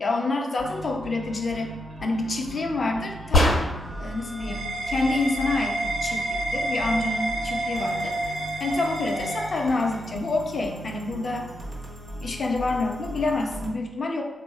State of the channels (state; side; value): normal; both; correlation 0.81